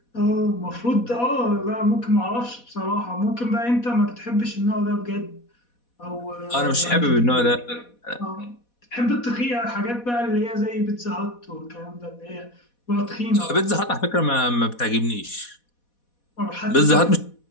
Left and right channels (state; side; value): late; right; 4.1 ms